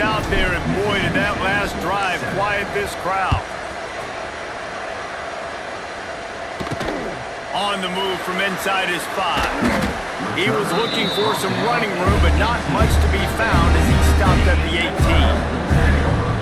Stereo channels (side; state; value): both; identical; correlation 1.00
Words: out there, and boy, did that last drive quiet this crowd. On the move from inside his 5. He was looking for some running room, but not much to be found as he stopped at the